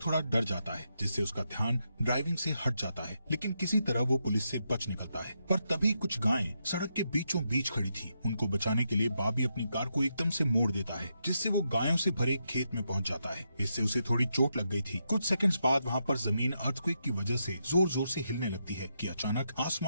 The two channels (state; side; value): inverted; both; correlation -0.83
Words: थोड़ा डर जाता है, जिससे उसका ध्यान ड्राइविंग से हट जाता है, लेकिन किसी तरह वो पुलिस से बच निकलता है। पर तभी कुछ गायें सड़क के बीचों बीच खड़ी थी। उनको बचाने के लिए बार्बी अपनी कार को एकदम से मोड़ देता है, जिससे वो गायों से भरे खेत में पहुंच जाता है। इससे उसे थोड़ी चोट लग गई थी। कुछ सेकंड्स बाद वहाँ पर जमीन अर्थक्वेक की वजह से जोर जोर से हिलने लगती है कि अचानक